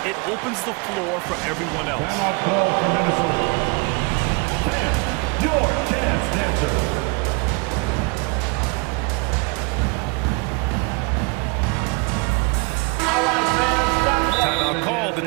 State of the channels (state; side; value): quieter; left; 29.7 dB